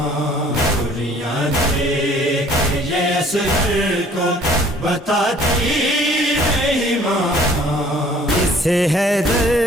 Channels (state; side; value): normal; both; correlation 0.55